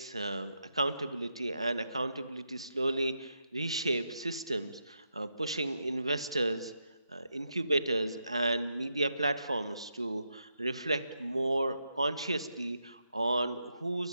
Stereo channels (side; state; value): both; inverted; correlation -0.83